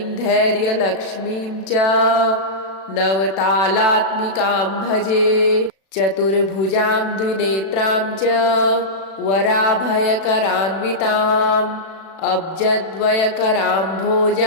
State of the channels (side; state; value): right; late; 36 ms